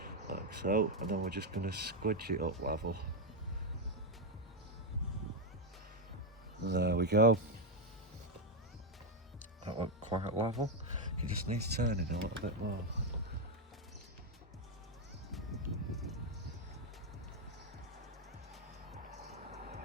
like so, and then we're just going to squidge it up level. There we go, that looked quite level. It just needs turning a little bit more.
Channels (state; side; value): normal; both; correlation 0.03